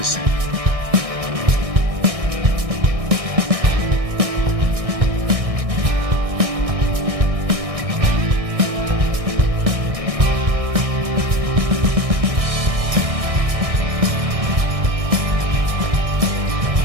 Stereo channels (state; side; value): late; left; 1.6 ms